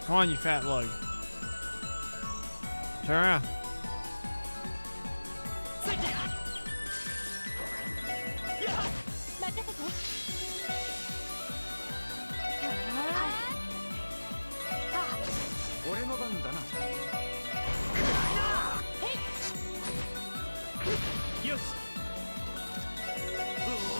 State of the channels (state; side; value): inverted; both; correlation -1.00